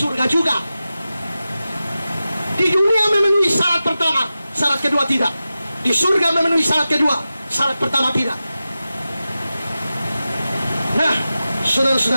juga. Di dunia memenuhi syarat pertama, syarat kedua tidak. Di surga memenuhi syarat kedua, syarat pertama tidak. Nah,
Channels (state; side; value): inverted; both; correlation -0.94